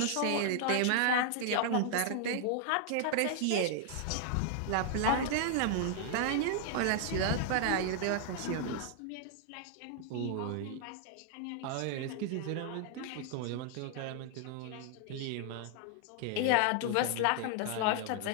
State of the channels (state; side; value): different; both; correlation 0.00